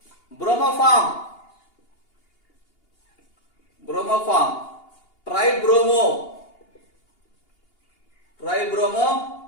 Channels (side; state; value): right; late; 2.8 ms